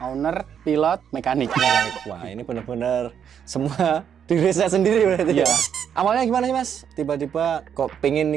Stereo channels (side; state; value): left; quieter; 8.3 dB